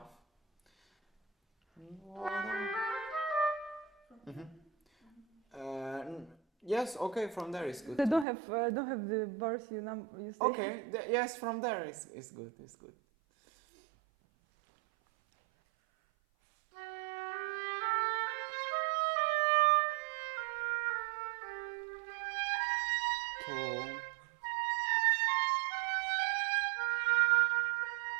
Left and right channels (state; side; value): drops out; left; at 8.2 s